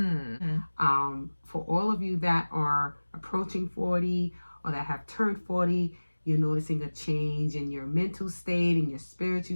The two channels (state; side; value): inverted; both; correlation -1.00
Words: For all of you that are approaching 40 or that have turned 40, you're noticing a change in your mental state, in your